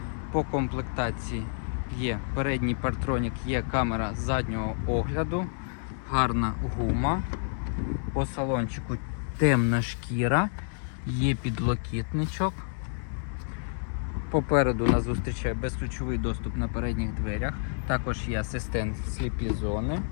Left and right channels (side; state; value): right; silent; 59 dB below the other